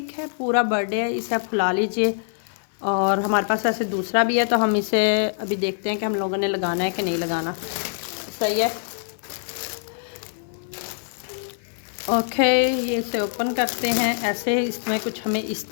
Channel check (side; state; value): right; silent; 59 dB below the other